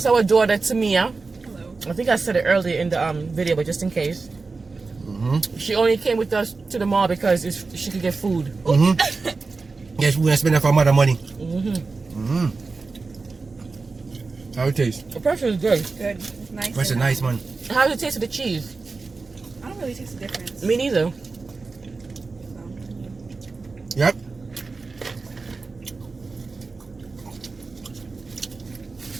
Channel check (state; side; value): quieter; left; 4.1 dB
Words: our daughter, Tamia. Hello. I think I said it earlier in the video, but just in case. She only came with us to the mall because she could get food. Yes, we're going to spend that for mother money. How it taste? The pretzel is good. Good. It's nice. That's a nice one. How does it taste with the cheese? I don't really taste the difference. Me neither. Yep.